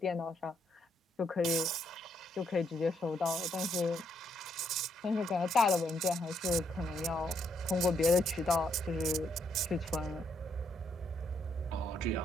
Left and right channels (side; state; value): both; normal; correlation 0.74